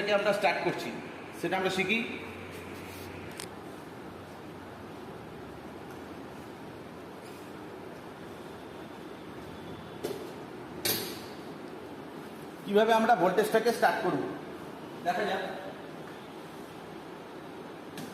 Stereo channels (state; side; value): identical; both; correlation 1.00